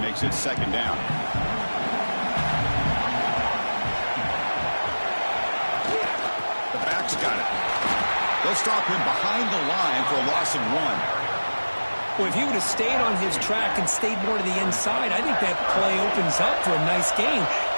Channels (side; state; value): both; inverted; correlation -1.00